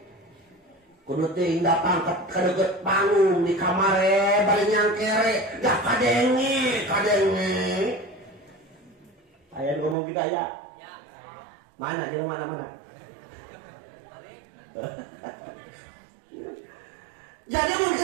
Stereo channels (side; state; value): left; drops out; at 10.0 s